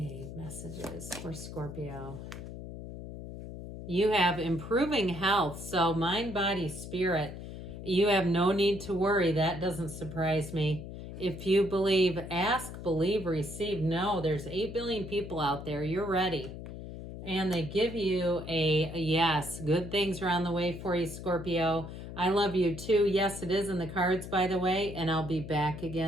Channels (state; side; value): noise; left; hum, 10 dB below the sound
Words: messages for Scorpio. You have improving health, so mind, body, spirit. You have no need to worry. That doesn't surprise me. If you believe, ask, believe, receive. No, there's 8 billion people out there. You're ready. And they give you a yes. Good things are on the way for you, Scorpio. I love you too. Yes, it is in the cards, by the way, and I'll be back